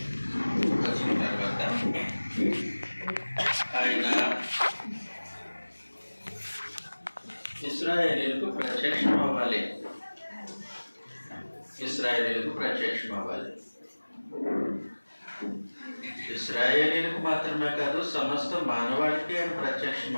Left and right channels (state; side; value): inverted; both; correlation -1.00